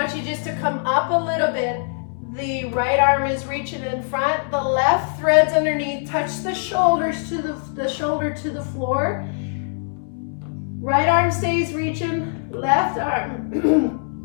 you just to come up a little bit. The right arm is reaching in front. The left threads underneath. Touch the shoulders to the shoulder to the floor. Right arm stays reaching. Left arm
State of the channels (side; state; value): right; silent; 64 dB below the other